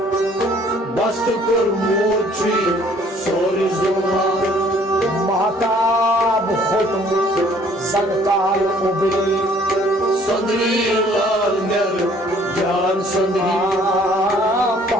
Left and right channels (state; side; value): normal; both; correlation 0.58